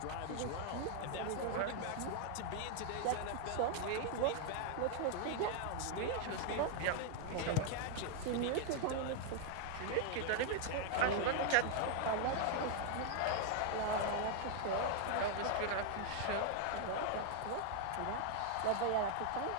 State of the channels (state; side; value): different; both; correlation 0.00